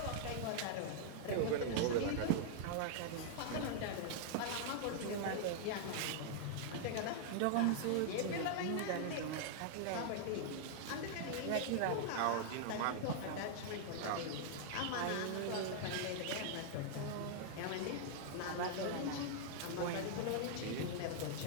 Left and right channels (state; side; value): different; both; correlation -0.01